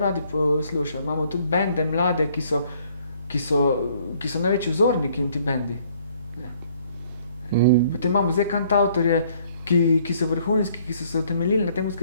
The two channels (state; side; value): inverted; both; correlation -0.62